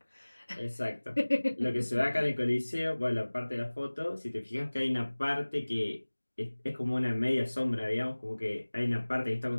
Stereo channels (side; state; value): both; inverted; correlation -1.00